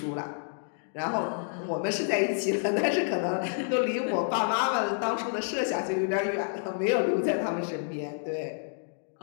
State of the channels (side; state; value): right; silent; 58 dB below the other